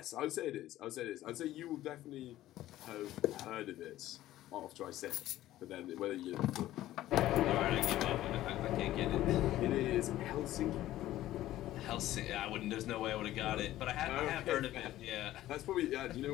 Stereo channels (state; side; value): quieter; right; 14.5 dB